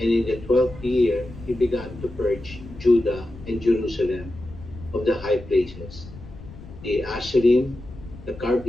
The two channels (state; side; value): noise; left; rumble, 15 dB below the sound